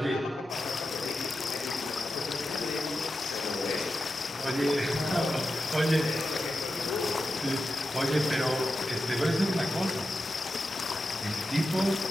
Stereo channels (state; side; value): normal; both; correlation 0.91